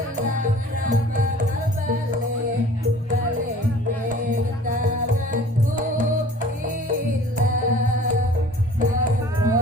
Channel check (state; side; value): normal; both; correlation 0.48